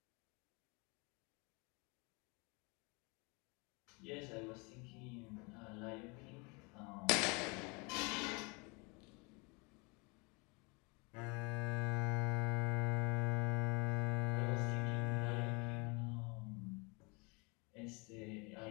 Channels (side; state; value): right; quieter; 30.0 dB